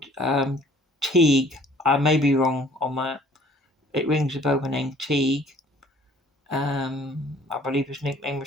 Teague. I may be wrong on that. It rings a bell, the name Teague. I believe his nickname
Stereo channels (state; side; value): normal; both; correlation 0.55